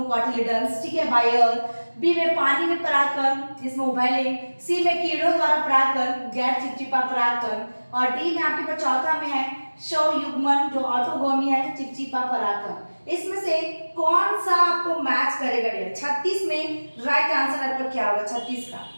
ठीक है, बायर। बी में पानी में परागकण जिसमें उभयलिंग, सी में कीड़ों द्वारा परागकण गैर चिपचिपा परागकण, और डी में आपके पास चौथा में है स्वयुग्मन जो ऑटोगोमी है चिपचिपा परागकण। इसमें से कौन सा आपको मैच करेगा डियर, 36 में राइट आंसर आपका क्या होगा,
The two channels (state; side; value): inverted; both; correlation -1.00